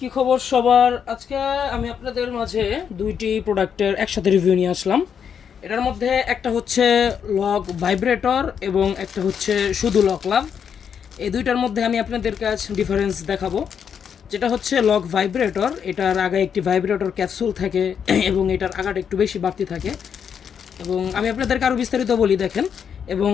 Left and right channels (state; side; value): quieter; right; 7.6 dB